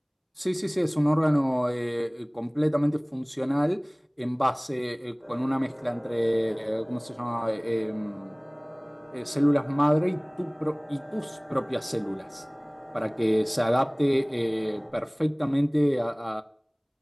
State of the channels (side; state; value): both; identical; correlation 1.00